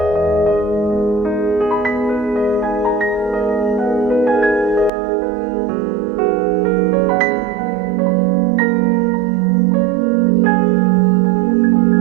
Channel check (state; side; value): drops out; left; at 4.9 s